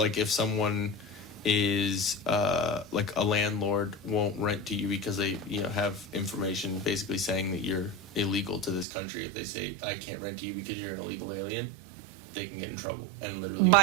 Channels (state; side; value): drops out; left; at 8.8 s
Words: if someone is like a landlord won't rent to you because they have information basically saying that you're illegal to this country. If they say I can't rent to you because you're an illegal alien, they can get in trouble and literally